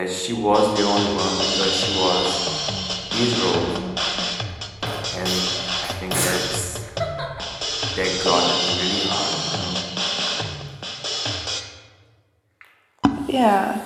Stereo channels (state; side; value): identical; both; correlation 1.00